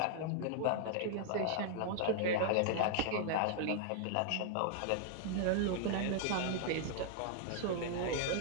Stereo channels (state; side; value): different; both; correlation -0.01